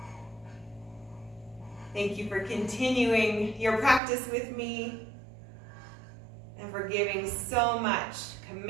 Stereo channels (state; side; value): drops out; left; at 4.0 s